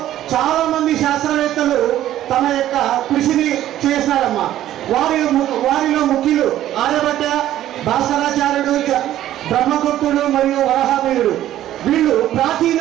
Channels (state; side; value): quieter; left; 12.8 dB